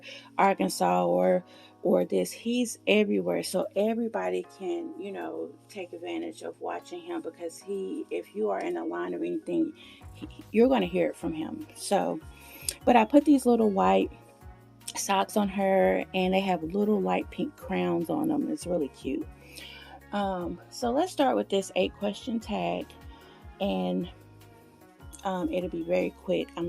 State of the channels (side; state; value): both; identical; correlation 1.00